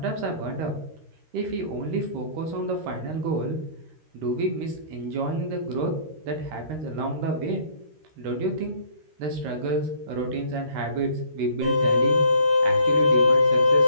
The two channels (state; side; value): late; left; 13 ms